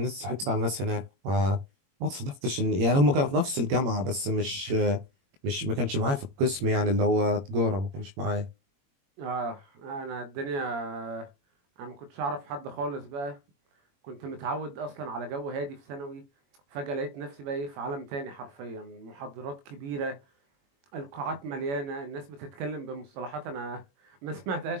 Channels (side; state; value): left; late; 21 ms